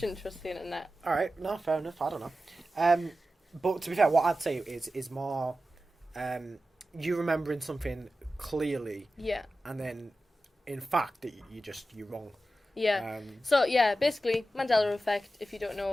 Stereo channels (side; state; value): both; normal; correlation 0.93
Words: trust the internet. Alright, no, fair enough, I don't know. But to be fair, what I'd say is more you remembering something clearly. Yeah. And then, in fact, you're wrong. Yeah. So, yeah, basically, Mandela effect, if you don't